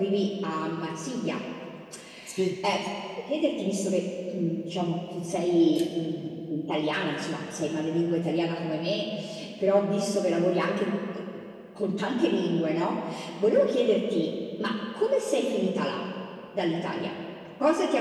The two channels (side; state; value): both; identical; correlation 1.00